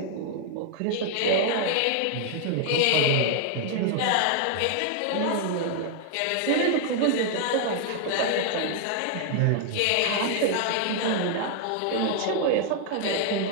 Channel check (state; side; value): different; both; correlation 0.00